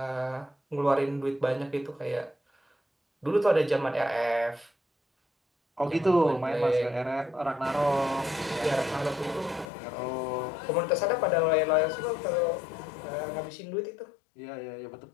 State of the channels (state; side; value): drops out; right; at 9.7 s